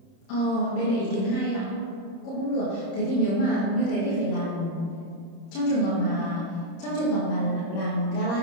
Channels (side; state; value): right; late; 30 ms